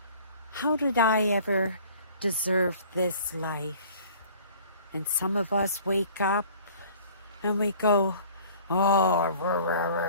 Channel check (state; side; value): inverted; both; correlation -0.50